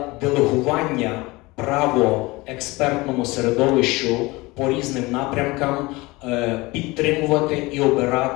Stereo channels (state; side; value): quieter; right; 22.4 dB